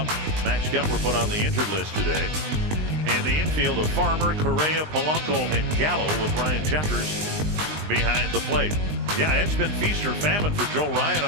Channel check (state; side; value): late; left; 20 ms